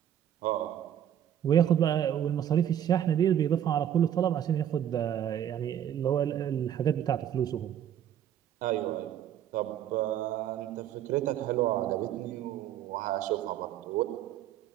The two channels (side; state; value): left; quieter; 10.4 dB